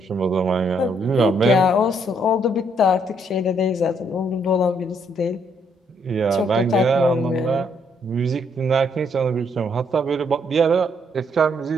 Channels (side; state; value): both; normal; correlation 0.71